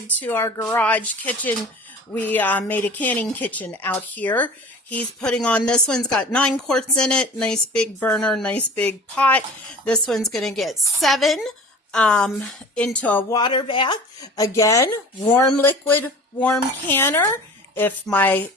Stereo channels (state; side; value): normal; both; correlation 0.41